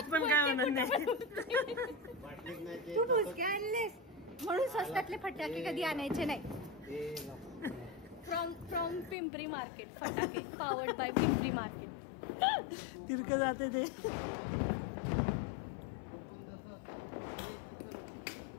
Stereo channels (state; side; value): drops out; right; at 9.2 s